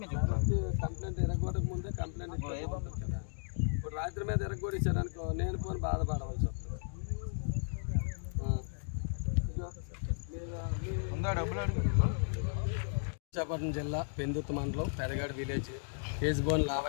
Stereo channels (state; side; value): silent; right; digital silence